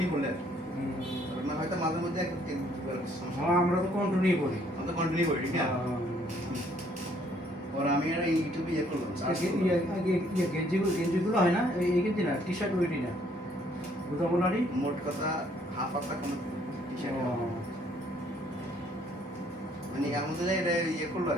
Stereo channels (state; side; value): normal; both; correlation 0.64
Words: করলে না হয়তো মাঝে মধ্যে আমরা তো কন্টিনিউ করি আমরা তো কন্টিনিউ করি ঠিক না और আমি আর ইউটিউবে ইয়ে করলাম গেঞ্জিগুলো হয় না এই গেঞ্জি না টি শার্ট ওইটি না বুঝাবোনারি মোট কথা হাফ পাতা কোনো টি শার্ট মানে আমাদের এটা ইয়ে করলো